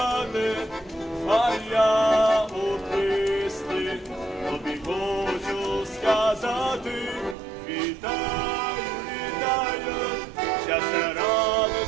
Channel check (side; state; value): left; drops out; at 7.4 s